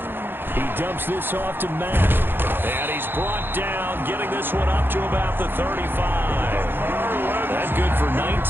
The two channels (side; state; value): left; late; 0.10 ms